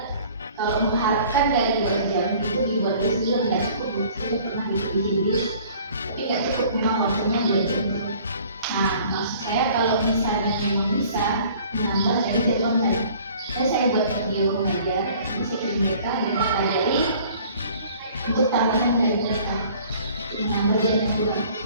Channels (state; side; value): inverted; both; correlation -0.52